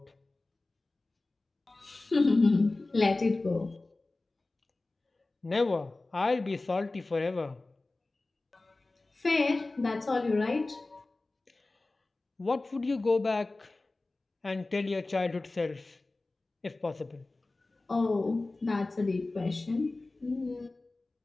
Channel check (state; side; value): quieter; right; 3.1 dB